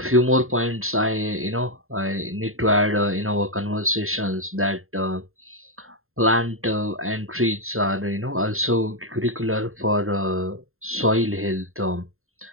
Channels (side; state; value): left; late; 0.61 ms